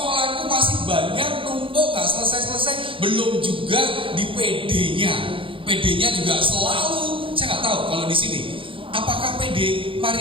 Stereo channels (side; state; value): left; late; 0.25 ms